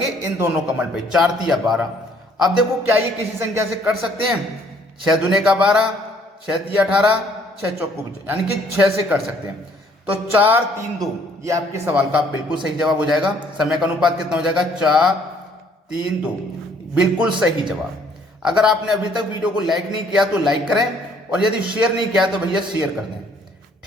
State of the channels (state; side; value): normal; both; correlation 0.62